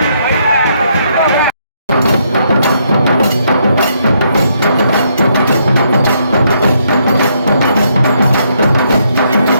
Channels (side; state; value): both; inverted; correlation -0.74